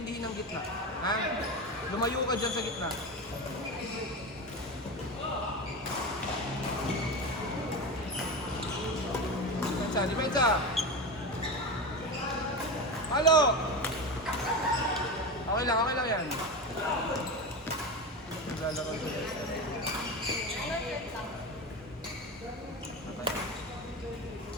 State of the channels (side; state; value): both; normal; correlation 0.22